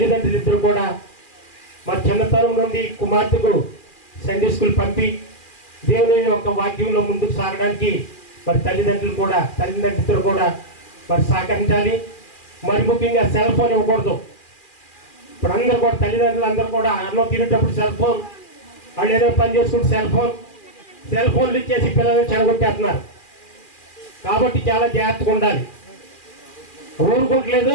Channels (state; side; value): late; right; 2.4 ms